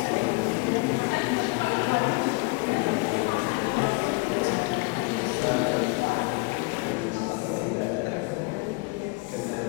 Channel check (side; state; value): right; quieter; 27.4 dB